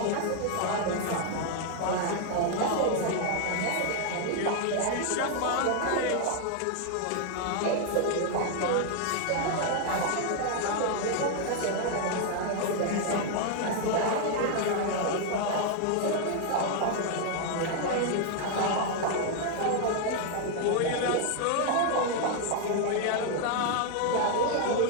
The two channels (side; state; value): both; different; correlation 0.00